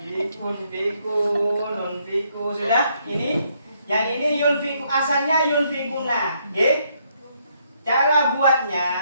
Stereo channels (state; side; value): inverted; both; correlation -0.72